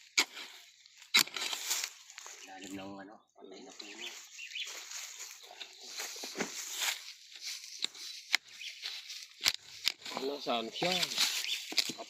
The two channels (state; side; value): identical; both; correlation 1.00